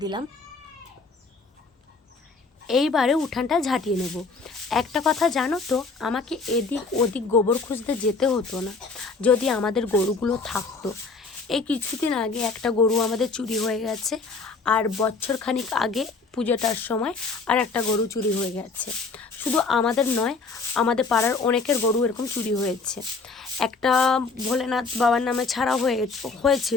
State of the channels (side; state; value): right; quieter; 4.2 dB